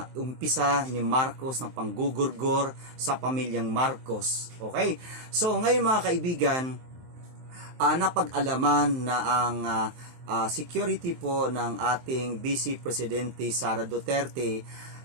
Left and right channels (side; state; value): left; late; 23 ms